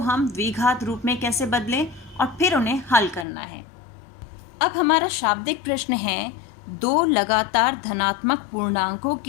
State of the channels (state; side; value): drops out; right; at 3.2 s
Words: द्विघात रूप में कैसे बदलें और फिर उन्हें हल करना है। अब हमारा शाब्दिक प्रश्न है, 2 लगातार धनात्मक पूर्णांकों